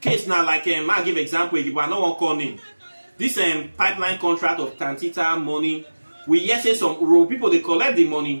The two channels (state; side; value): inverted; both; correlation -1.00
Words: case now, like I'll give example, but I don't want to call name. This pipeline contract of Tantita money, we yes say some Urhobo people they collect the